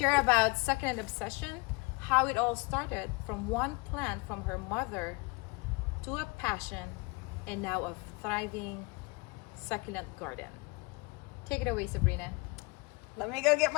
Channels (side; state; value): right; quieter; 27.4 dB